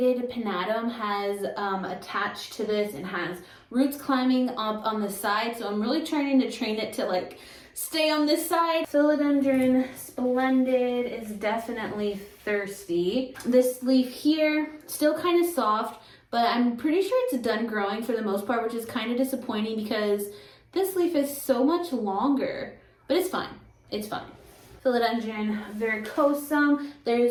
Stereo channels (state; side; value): identical; both; correlation 1.00